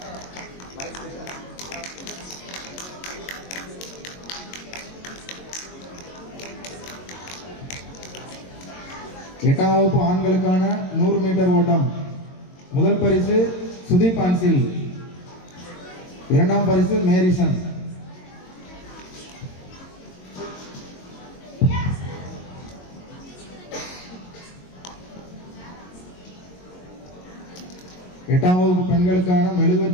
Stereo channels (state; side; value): late; right; 22 ms